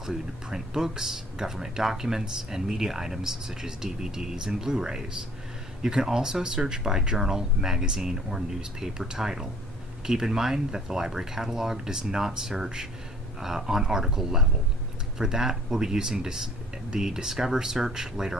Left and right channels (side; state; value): both; normal; correlation 0.55